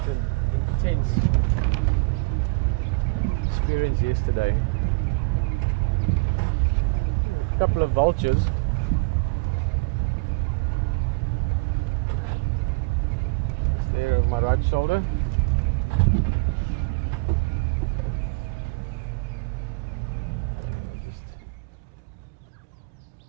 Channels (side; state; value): left; quieter; 30.3 dB